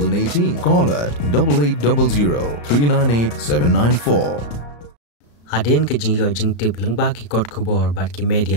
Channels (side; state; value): right; late; 34 ms